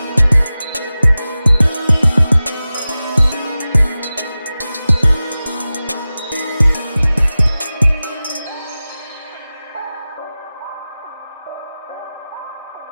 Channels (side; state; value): both; inverted; correlation -0.96